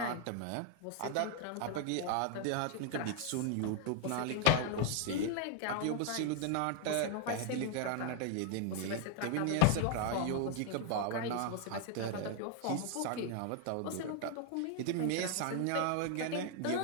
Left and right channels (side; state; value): both; different; correlation 0.01